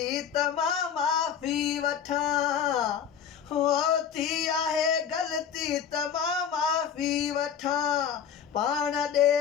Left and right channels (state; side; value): quieter; right; 8.1 dB